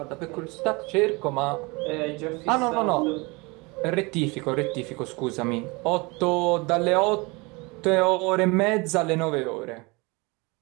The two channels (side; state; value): left; quieter; 26.5 dB